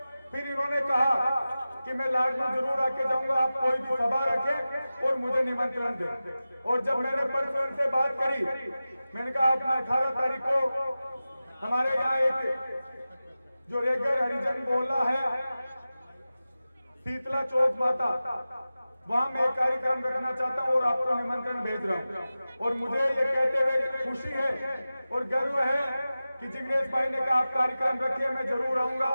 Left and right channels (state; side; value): inverted; both; correlation -0.95